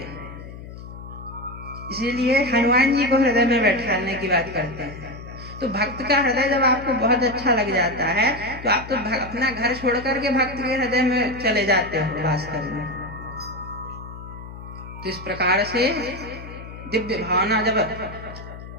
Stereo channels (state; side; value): noise; left; hum, 13 dB below the sound